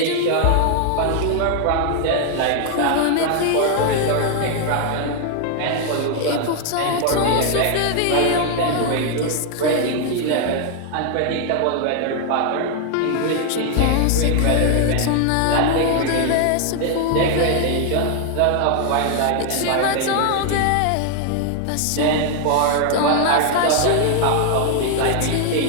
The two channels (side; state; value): both; different; correlation 0.00